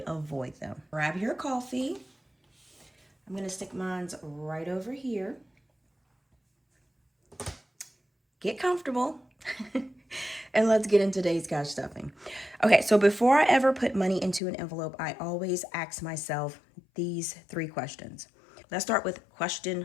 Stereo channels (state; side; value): drops out; right; at 14.4 s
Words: avoid them. Grab your coffee. I'm going to stick mine right over here. Get comfortable. And let's get into today's cash stuffing. Okay, so before I ever put money into an envelope, I always ask myself these three questions. Let's start with